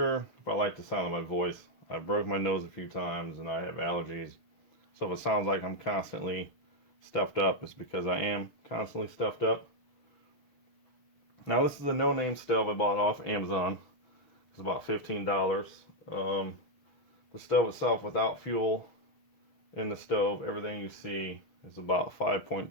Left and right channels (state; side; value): late; right; 6.4 ms